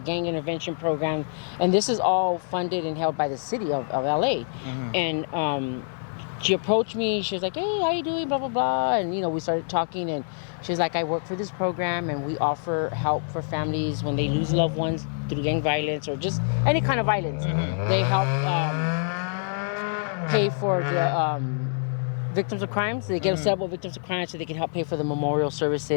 gang intervention program. And this is all funded and held by the city of LA. Mm-hmm. And she approached me. She was like, hey, how you doing? Blah, blah, blah. And, you know, we started talking. And she was like, I work for this program, and we offer help for families when they lose loved ones through gang violence or just any kind of violence. Mm-hmm. They help pay for the victims of crime. So they get several victims of crime so they can help pay for the memorial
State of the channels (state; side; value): silent; right; digital silence